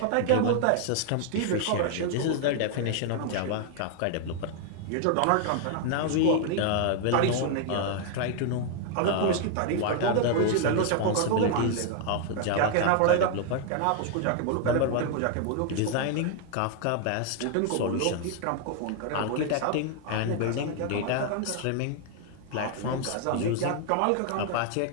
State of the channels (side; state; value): both; different; correlation 0.00